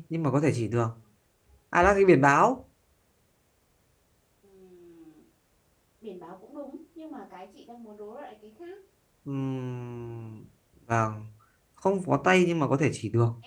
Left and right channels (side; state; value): both; identical; correlation 1.00